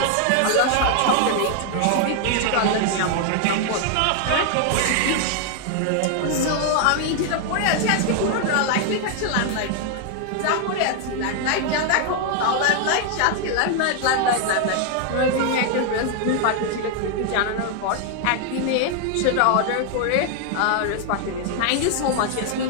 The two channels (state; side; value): different; both; correlation 0.00